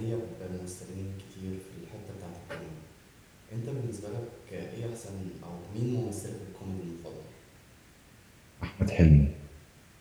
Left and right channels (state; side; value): identical; both; correlation 1.00